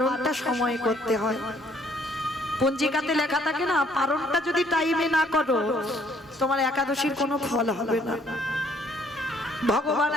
সময় করতে হয়। পঞ্জিকাতে লেখা থাকে না, পারণটা যদি টাইমে না করো তোমার একাদশীর কোনো ফল হবে না। ভগবান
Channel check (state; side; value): normal; both; correlation 0.63